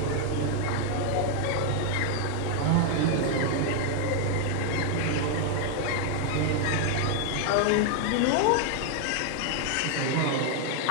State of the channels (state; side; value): different; both; correlation 0.00